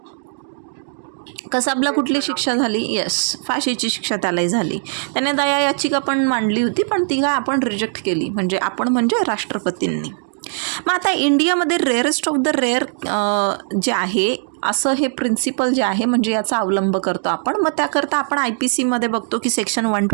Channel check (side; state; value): left; silent; 66 dB below the other